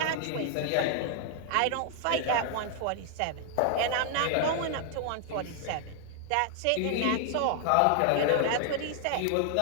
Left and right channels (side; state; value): both; different; correlation 0.00